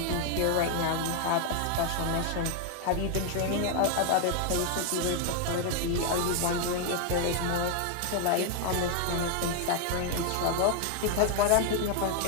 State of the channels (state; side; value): different; both; correlation 0.00